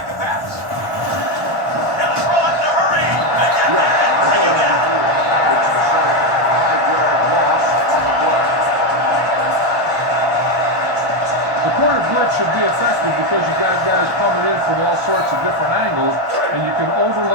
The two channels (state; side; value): late; left; 1.2 ms